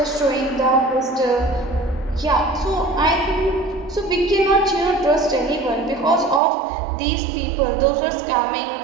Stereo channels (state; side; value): drops out; left; at 6.4 s